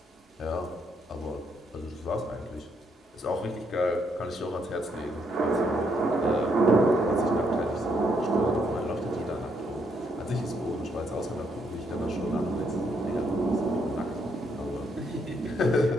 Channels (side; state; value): both; normal; correlation 0.74